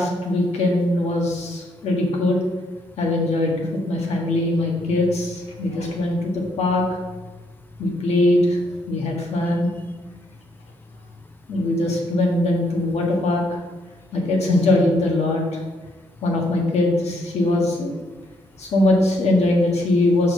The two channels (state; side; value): normal; both; correlation 0.72